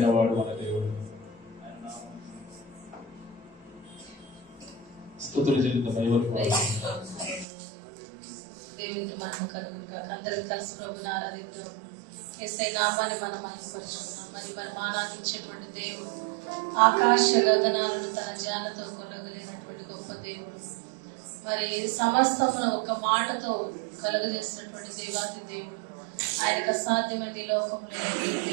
వాడు మన దేవుడు. స్తుతులు చెల్లింది దేవునికి మనం కలుగుగా అందరూ కలిసి ప్రభుని ఆరాధిద్దాం. యేసయ్య నామాన్ని మనం మహిమపరుచుకున్నాం. మరి మనం ఆరాధించేటువంటి దేవుడు ఆకాశ గగనాలను తన జ్ఞానతో కొలగలేనటువంటి గొప్ప దేవుడు. మరి సమస్తమును ఒక మాటతో కలుగజేసినటువంటి దేవాతి దేవుడు. ఆయనకు అసాధ్యమైన ఈ లోకంలో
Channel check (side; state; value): left; drops out; at 7.5 s